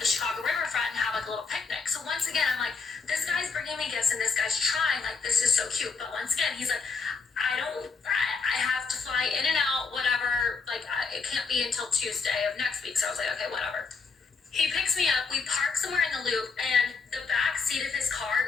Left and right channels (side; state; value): right; quieter; 4.8 dB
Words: Chicago riverfront and have a little picnic. So once again, I'm like, this guy's bringing me gifts and this guy's trying, this is so cute. But once again, he's like, I have to fly in and out, whatever, it can't be until Tuesday of next week. So I was like, okay, whatever. He picks me up, we park somewhere in the loop, and the back seat of his